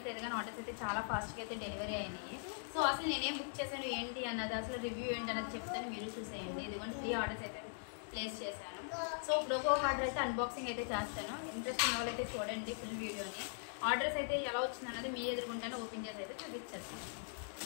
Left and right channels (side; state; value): right; silent; digital silence